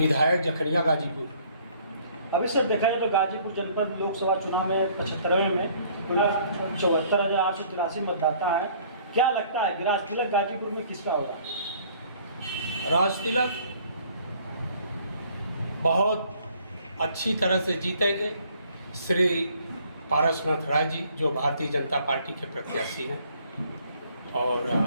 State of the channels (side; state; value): both; inverted; correlation -0.59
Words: जखनिया गाजीपुर। अभी सर देखा जाए तो गाजीपुर जनपद लोकसभा चुनाव में 75वें में कुल 74,883 मतदाता हैं। क्या लगता है राज तिलक गाजीपुर में किसका होगा? राज तिलक बहुत अच्छी तरह से जीतेंगे। श्री पारसनाथ राय जी जो भारतीय जनता पार्टी के प्रत्याशी हैं, और